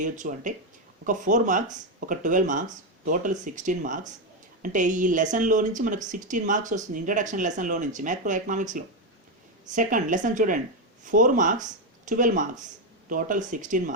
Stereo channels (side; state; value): both; normal; correlation 0.06